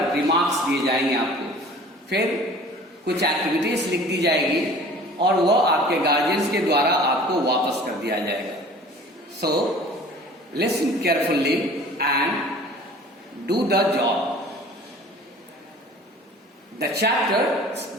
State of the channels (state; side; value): normal; both; correlation 0.46